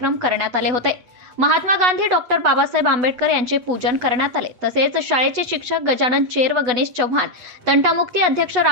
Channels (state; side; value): late; left; 8.1 ms